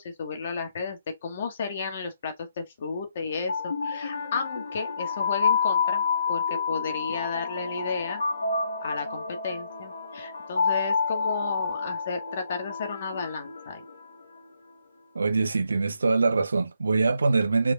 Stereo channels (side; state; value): both; inverted; correlation -0.76